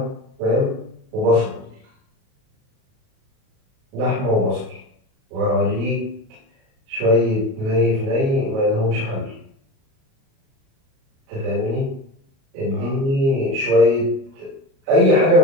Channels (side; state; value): left; late; 37 ms